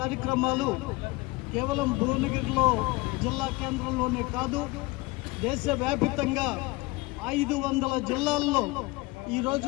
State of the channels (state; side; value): quieter; right; 23.0 dB